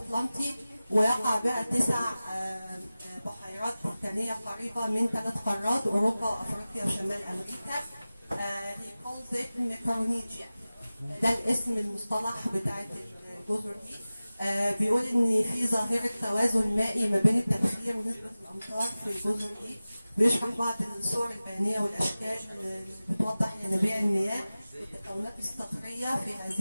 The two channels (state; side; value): inverted; both; correlation -0.96